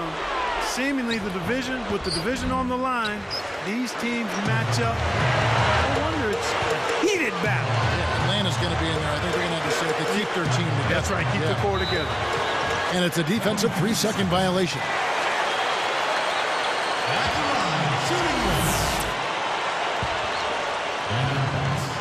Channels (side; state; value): both; identical; correlation 1.00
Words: Seemingly the division, with the division on the line, these teams match up. I wonder, it's a heated battle. Yeah, Atlanta's going to be in there. I think they're going to have to say they keep their team together. That's right, keep the core together. And it's a defensive 3-second violation.